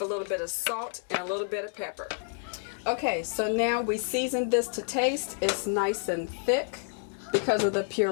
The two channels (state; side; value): silent; right; 58 dB below the other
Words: a little bit of salt and a little bit of pepper. Okay, so now we seasoned this to taste. It's nice and thick because of the